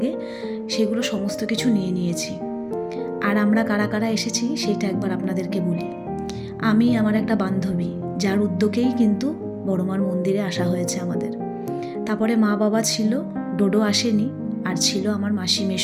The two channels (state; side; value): identical; both; correlation 1.00